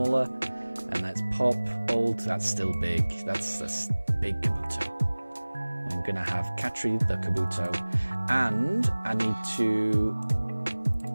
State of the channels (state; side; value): inverted; both; correlation -1.00